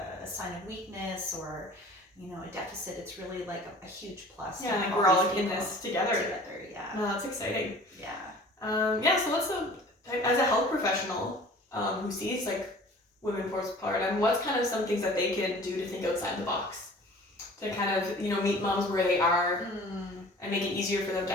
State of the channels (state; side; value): normal; both; correlation 0.46